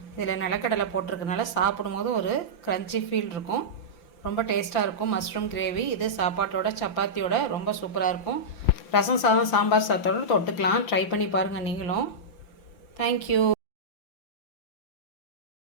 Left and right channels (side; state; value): right; late; 5.9 ms